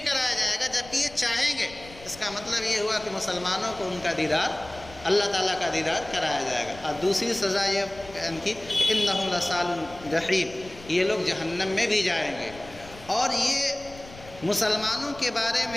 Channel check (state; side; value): noise; left; rumble, 19 dB below the sound